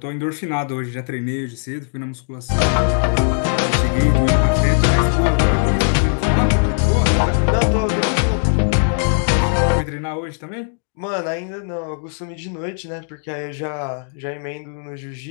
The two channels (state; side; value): silent; right; 66 dB below the other